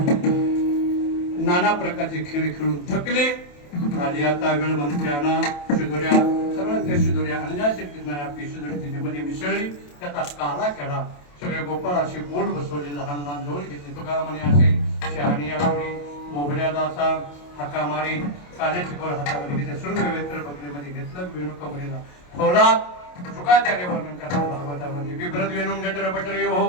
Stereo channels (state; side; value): late; right; 28 ms